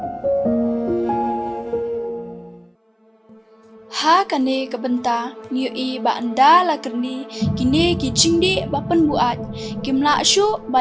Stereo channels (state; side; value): identical; both; correlation 1.00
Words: ha kane kabenta ngiu i ba anda la kerni kine ki jingdi ba Pynbuaid kimla shu